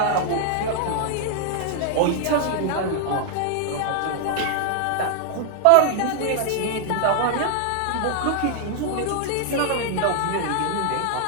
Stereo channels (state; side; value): different; both; correlation 0.00